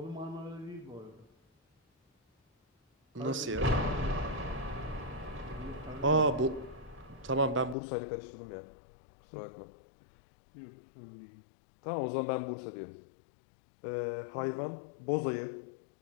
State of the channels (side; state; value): right; drops out; at 7.8 s